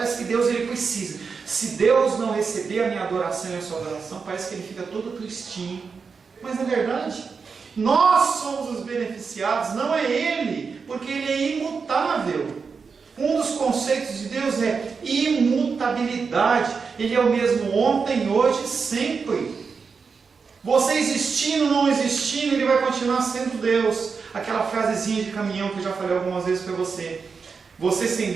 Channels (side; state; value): left; quieter; 5.3 dB